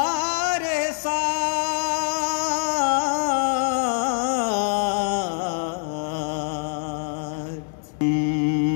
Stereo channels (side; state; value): right; silent; digital silence